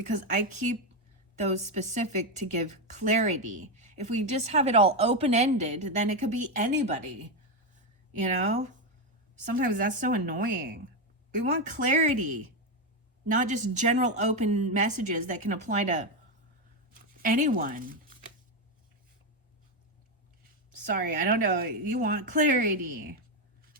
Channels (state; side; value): normal; both; correlation 0.08